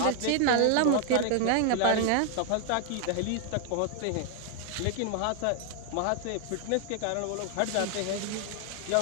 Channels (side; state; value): both; different; correlation 0.00